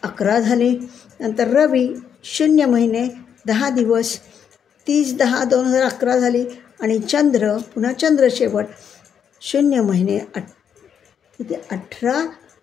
झाले. नंतर रवी 0 महिने 10 दिवस, 30/10/2011 झाली. आणि चंद्र, पुन्हा चंद्र शेवट 0 महिने 18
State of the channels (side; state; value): right; quieter; 8.0 dB